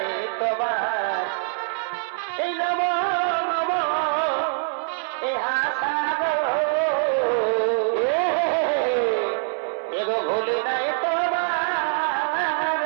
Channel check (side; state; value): left; silent; 63 dB below the other